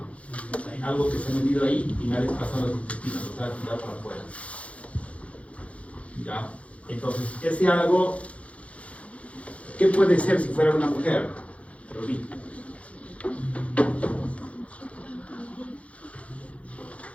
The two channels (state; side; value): late; right; 0.064 ms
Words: Hay algo que se ha metido ahí y me ha desplazado los intestinos, o sea, tirado para afuera. ¿Ya? Entonces, ese algo, ¿qué puede ser si fuera una mujer? Rubí.